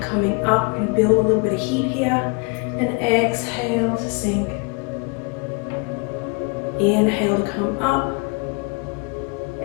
up, and build a little bit of heat here. And exhale to sink. Inhale to come up.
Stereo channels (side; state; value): right; quieter; 32.9 dB